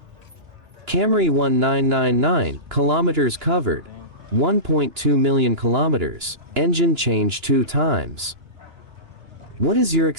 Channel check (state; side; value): late; left; 2.9 ms